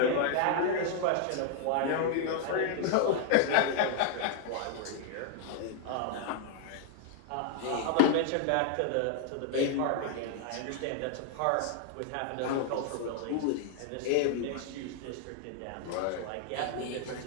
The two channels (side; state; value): both; different; correlation 0.00